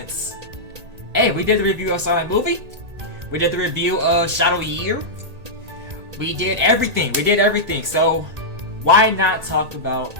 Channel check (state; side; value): late; left; 1.8 ms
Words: hey, we did the review of Sonic movie, we did the review of Shadow Year, we did everything, so why not talk about